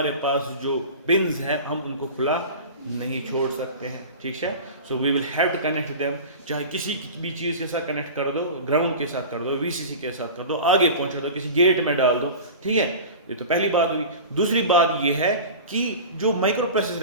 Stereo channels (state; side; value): inverted; both; correlation -0.33